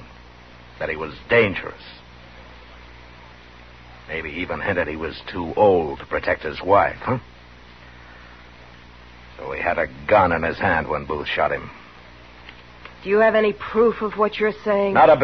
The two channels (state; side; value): identical; both; correlation 1.00